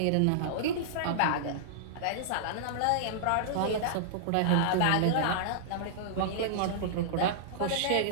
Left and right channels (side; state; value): both; different; correlation -0.02